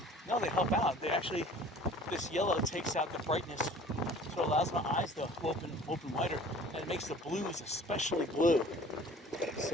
No, they help out. They actually, this yellow takes out the brightness, so it allows my eyes to open wider, and it makes the blues especially blue.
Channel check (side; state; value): both; normal; correlation 0.48